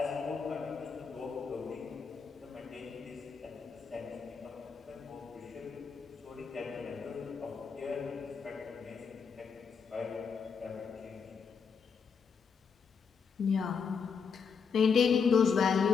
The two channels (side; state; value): right; quieter; 6.0 dB